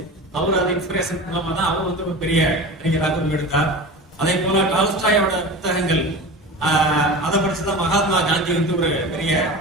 அவர் அது இன்ஸ்பிரேஷன் மூலமா தான் அவர் வந்து ஒரு பெரிய அறிஞராக உருவெடுத்தார். அதே போல டால்ஸ்டாயோட புத்தகங்கள் அதை படிச்சுதான் மகாத்மா காந்தி வந்து ஒரு பெரிய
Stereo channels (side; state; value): both; normal; correlation 0.31